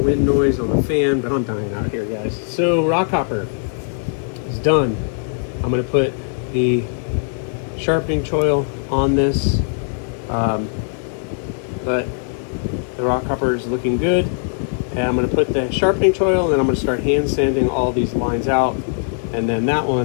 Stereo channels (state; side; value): silent; right; 66 dB below the other